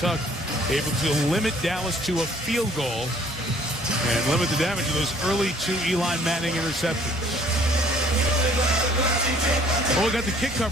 able to limit Dallas to a field goal and limit the damage of those early 2 Eli Manning interceptions. Well, we got the kick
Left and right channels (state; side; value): normal; both; correlation 0.58